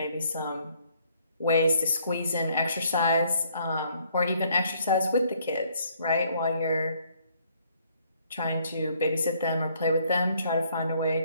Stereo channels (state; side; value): inverted; both; correlation -0.66